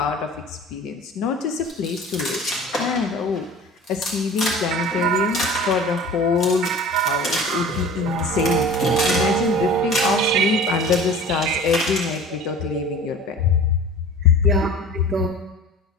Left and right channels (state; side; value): normal; both; correlation 0.40